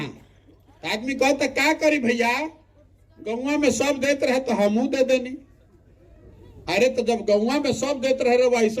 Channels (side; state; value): both; identical; correlation 1.00